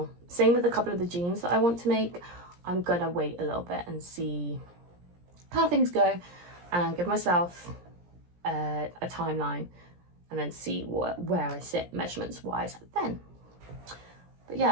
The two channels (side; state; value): left; late; 17 ms